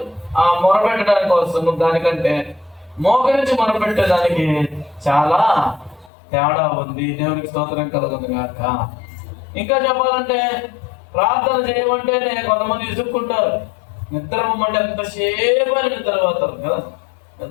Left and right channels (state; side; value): drops out; right; at 6.1 s